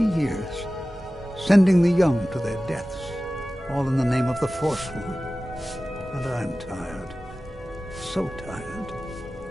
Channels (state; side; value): normal; both; correlation 0.96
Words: years. Sending the young to their deaths, all in the name of the Forsworn. And I'm tired. So tired.